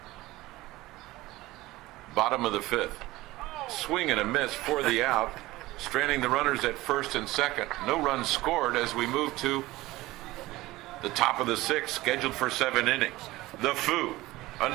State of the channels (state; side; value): quieter; left; 18.5 dB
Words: Bottom of the fifth. Swing and a miss for the out. Stranding the runners at first and second. No runs scored as we move to the top of the sixth, scheduled for 7 innings. The Foo,